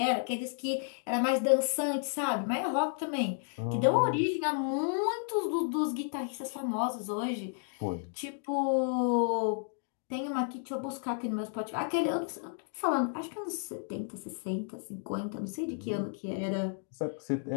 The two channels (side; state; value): right; silent; 56 dB below the other